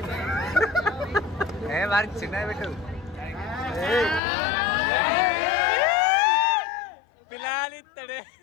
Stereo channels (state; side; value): drops out; right; at 4.2 s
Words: వారికి చిన్న పెట్టు పిల్లాలిస్తాడే.